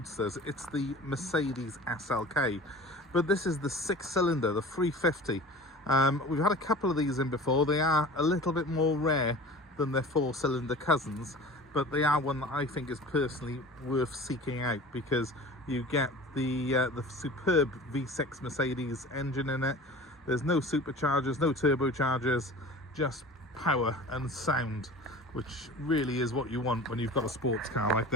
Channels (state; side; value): normal; both; correlation 0.39